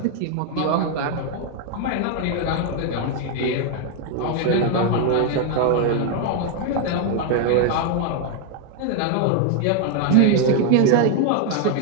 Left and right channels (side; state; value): both; different; correlation 0.00